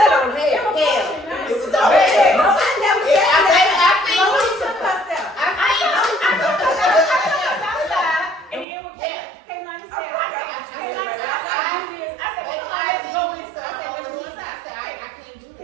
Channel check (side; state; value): left; drops out; at 8.7 s